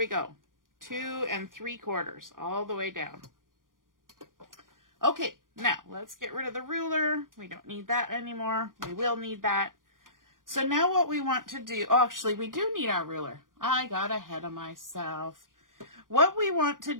go. 2 3/4 all the way down. Okay, now let's get rid of the ruler. We don't need that anymore. We will need that. So now what we want to do, actually we do need our ruler. I got ahead of myself. What we want to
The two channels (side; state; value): left; late; 0.90 ms